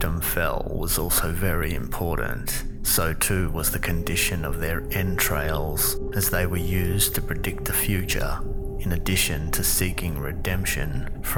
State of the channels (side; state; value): both; identical; correlation 1.00